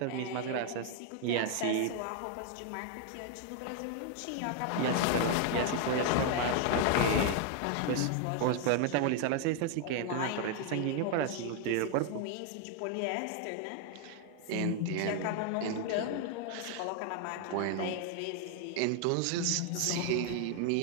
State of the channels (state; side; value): different; both; correlation 0.00